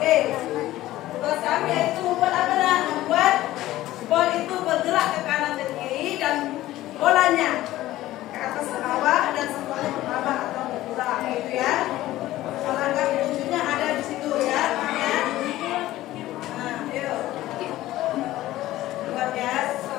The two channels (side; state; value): right; quieter; 15.5 dB